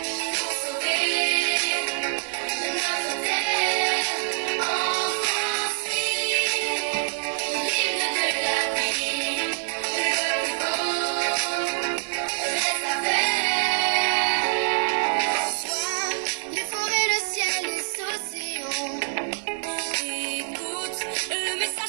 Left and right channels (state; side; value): silent; left; 58 dB below the other